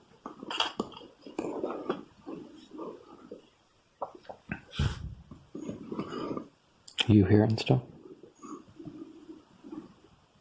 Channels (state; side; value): identical; both; correlation 1.00